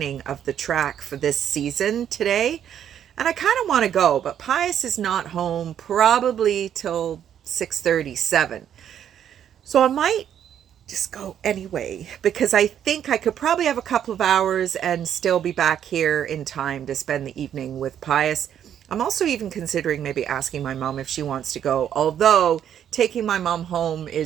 of the track for this season today. And I kind of want to go, but Pius is not home probably till 6:37. So I might just go anyway, because I think I could probably have a couple of hours and still be back here in time to spend the evening with Pius. I'm also even considering maybe asking my mom if she wants to go, although taking my mom home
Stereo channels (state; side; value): quieter; left; 9.6 dB